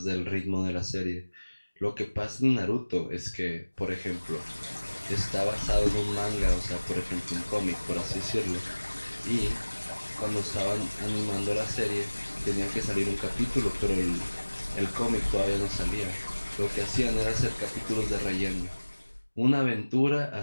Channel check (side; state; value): both; inverted; correlation -1.00